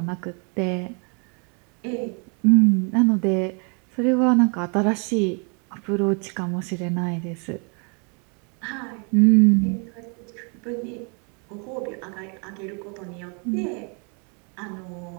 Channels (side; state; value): left; quieter; 36.7 dB